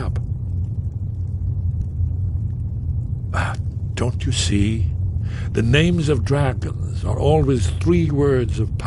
Don't you see? The names of dragons are always 3 words of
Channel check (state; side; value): identical; both; correlation 1.00